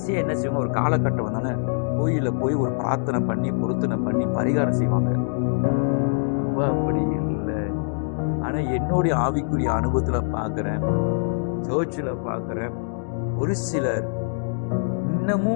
என்ன செய்வாங்க, ஒரு காலகட்டம் வந்தானே கோயில போய் ஒரு பிரார்த்தனை பண்ணி பொருத்தனை பண்ணி பரிகாரம் செய்வாங்க. நம்ம அப்படி இல்லை. ஆனா என்னுடைய ஆவிக்குரிய அனுபவத்துல பார்க்கிறேன், சர்ச்சில் பார்க்கிறேன், ஒரு சிலர்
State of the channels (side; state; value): right; silent; digital silence